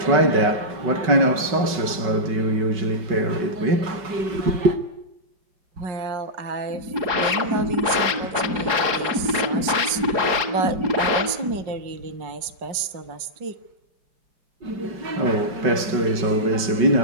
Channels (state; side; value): late; left; 5.5 ms